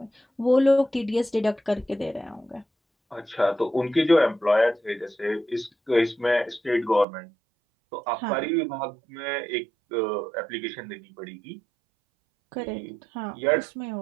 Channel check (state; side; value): drops out; left; at 7.1 s